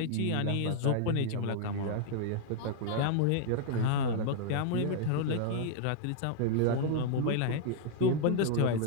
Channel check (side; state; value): both; different; correlation -0.01